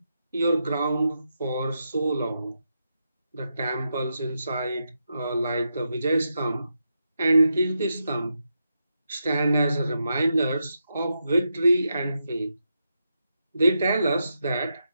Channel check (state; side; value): inverted; both; correlation -0.85